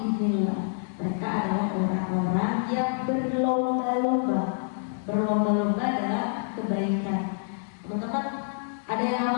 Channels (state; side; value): silent; right; digital silence